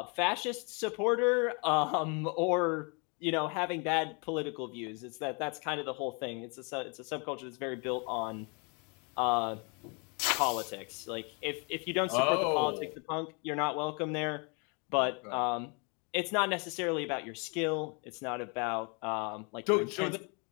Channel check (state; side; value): quieter; right; 34.2 dB